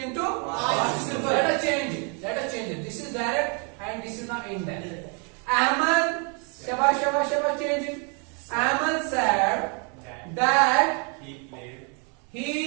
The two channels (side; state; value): left; quieter; 36.6 dB